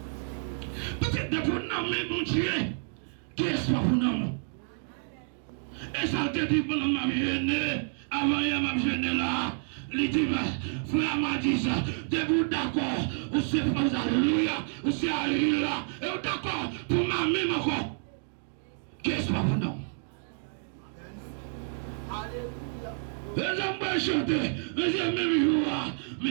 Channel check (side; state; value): left; silent; 58 dB below the other